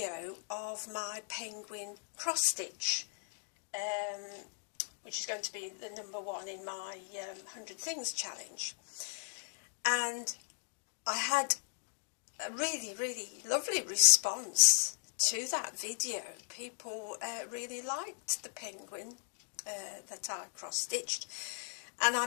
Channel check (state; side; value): silent; right; digital silence